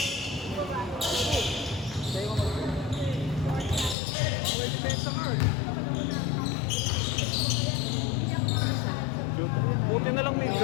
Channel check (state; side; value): drops out; right; at 4.0 s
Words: May depensa ka eh. Buti na lang din.